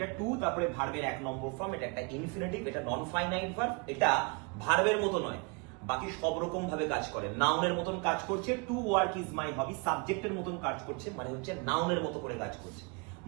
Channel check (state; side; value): quieter; left; 32.1 dB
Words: টু তারপরে ভার্বের 1 নম্বর ফর্ম, এটা একটা ইনফিনিটিভ, এটা নন ফাইনাইট ভার্ব, এটা ভার্বের মতো নয়, বাকি সব রকম ভাবে কাজ করে, নাউনের মতন কাজ করছে। টু ওয়ার্ক ইজ মাই হবি সাবজেক্টের মতন কাজ করছে, মানে হচ্ছে নাউনের মতো করে কাজ করছে।